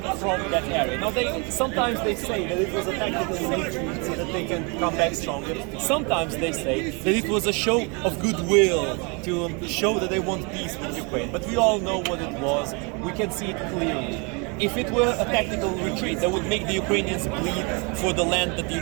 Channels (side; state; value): left; quieter; 31.9 dB